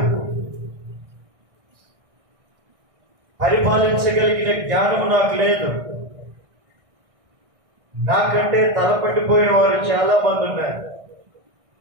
పరిపాలించగలిగిన జ్ఞానం నాకు లేదు, నాకంటే తలపడిపోయిన వారు చాలా మంది ఉన్నారు,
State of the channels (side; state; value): left; late; 1.6 ms